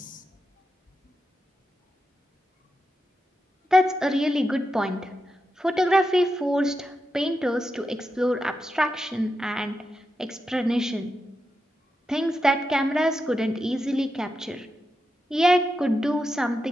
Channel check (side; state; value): both; normal; correlation 0.88